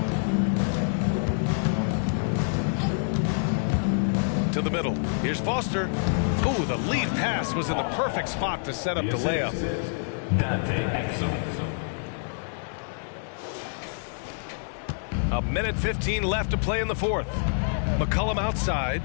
To the middle. Here's Foster. Ooh, the lead pass was in the perfect spot to set up the layup. Dante Exum. A minute 15 left to play in the fourth. McCollum outside.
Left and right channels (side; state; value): right; silent; 60 dB below the other